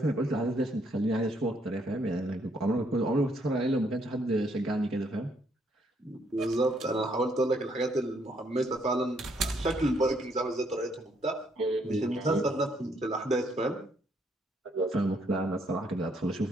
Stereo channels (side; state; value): both; normal; correlation 0.71